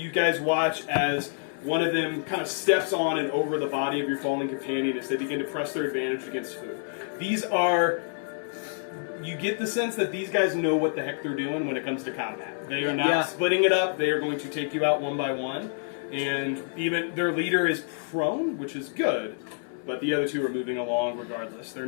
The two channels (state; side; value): silent; right; 59 dB below the other